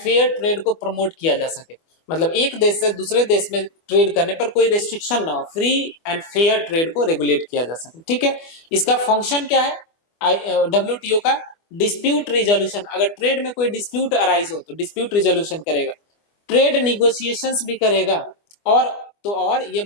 ट्रेड को प्रमोट किया जा सके। मतलब एक देश से दूसरे देश में ट्रेड करने पर कोई रेस्ट्रिक्शन ना हो, फ्री एंड फेयर ट्रेड को रेगुलेट किया जा सके। ठीक है, इसका फंक्शन क्या है WTO का? Dispute resolution. अगर ट्रेड में कोई डिस्प्यूट अराइज हो तो डिस्प्यूट रिजोल्यूशन करेगा, ट्रेड निगोशिएशंस भी करेगा, और ये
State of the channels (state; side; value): late; right; 24 ms